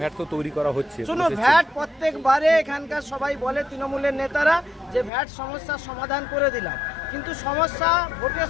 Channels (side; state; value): right; drops out; at 5.1 s